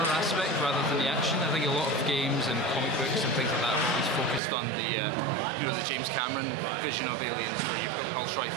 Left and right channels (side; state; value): left; drops out; at 4.4 s